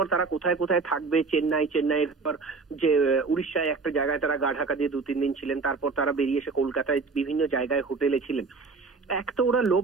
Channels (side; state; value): left; quieter; 4.3 dB